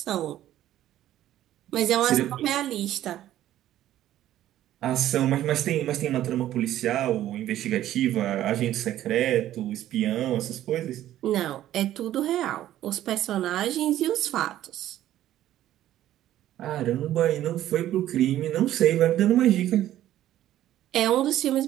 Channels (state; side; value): quieter; left; 12.9 dB